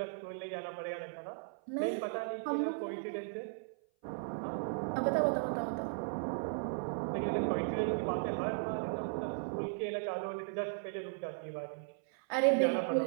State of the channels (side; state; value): left; silent; 53 dB below the other